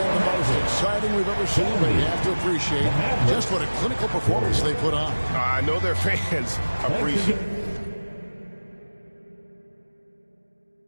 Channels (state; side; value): inverted; both; correlation -1.00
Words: the most exciting we've ever seen, but you have to appreciate just what a clinical performance they put on. I know their fans appreciate it.